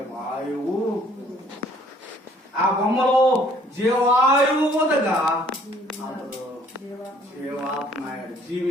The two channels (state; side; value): normal; both; correlation 0.59